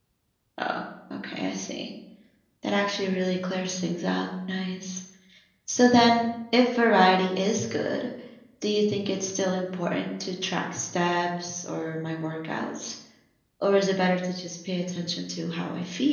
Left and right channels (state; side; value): identical; both; correlation 1.00